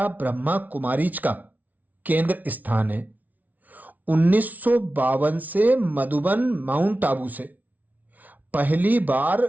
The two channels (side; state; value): left; late; 0.076 ms